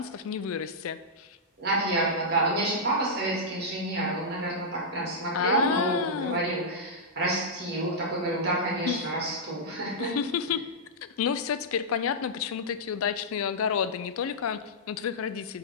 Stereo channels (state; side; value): normal; both; correlation -0.10